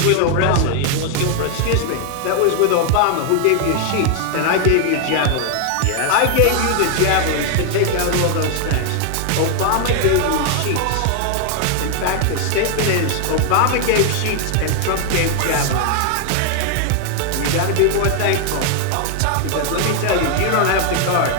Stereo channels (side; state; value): both; different; correlation 0.00